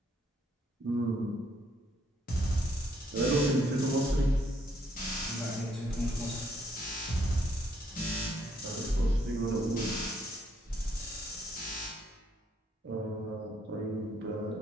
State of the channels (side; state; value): both; normal; correlation 0.71